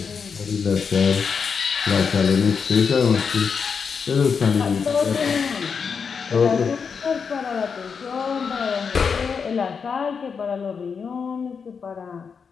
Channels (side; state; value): right; quieter; 6.0 dB